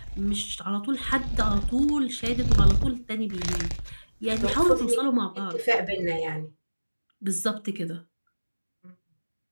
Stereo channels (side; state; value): both; inverted; correlation -1.00